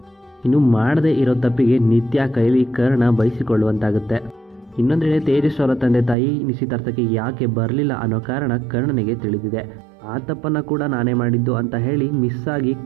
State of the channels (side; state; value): left; drops out; at 6.2 s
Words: ಇನ್ನು ಮಾಡದೇ ಇರೋ ತಪ್ಪಿಗೆ ನಿತ್ಯ ಕೈಲಿ ಕರ್ಣ ಬಯಸಿಕೊಳ್ಳುವಂತಾಗುತ್ತೆ. ಇನ್ನೊಂದೆಡೆ ತೇಜಸ್ ಅವರ ತಂದೆ ತಾಯಿ ನಿಶ್ಚಿತಾರ್ಥಕ್ಕೆ ಯಾಕೆ ಬರಲಿಲ್ಲ ಅನ್ನೋ ಕಾರಣ ಕರ್ಣನಿಗೆ ತಿಳಿದಿದೆ. ಆ ತಪ್ಪನ್ನು ಕೂಡ ನಾನೇ ಮಾಡಿದ್ದು ಅಂತ ಹೇಳಿ ಮಿಸ್ ಆಗಿ